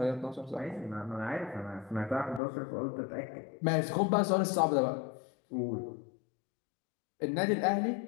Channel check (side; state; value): right; drops out; at 2.4 s